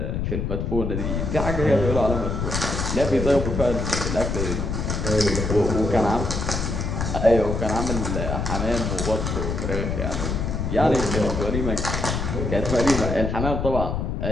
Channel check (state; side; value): noise; left; rumble, 2 dB below the sound